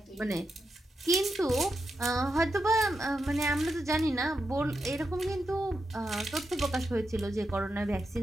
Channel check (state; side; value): normal; both; correlation 0.87